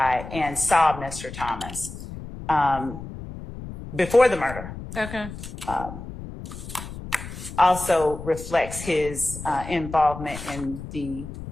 and saw Mr. Thomas before the murder. Okay. Also reflects his involvement in the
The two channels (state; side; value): noise; left; rumble, 11 dB below the sound